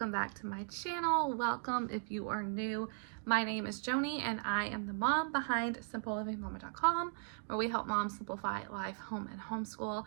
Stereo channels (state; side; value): silent; left; digital silence